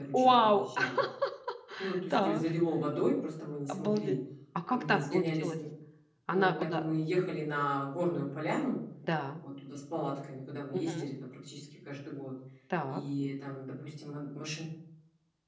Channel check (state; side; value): identical; both; correlation 1.00